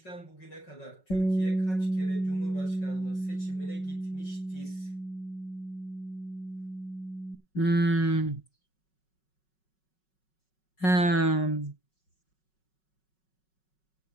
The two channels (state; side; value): late; right; 5.4 ms